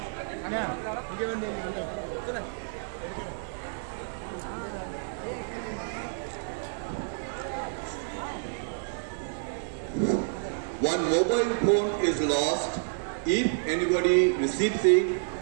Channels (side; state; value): left; silent; 58 dB below the other